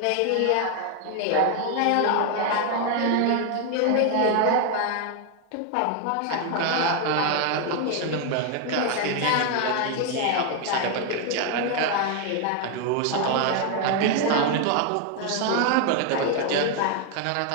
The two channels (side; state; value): both; different; correlation 0.01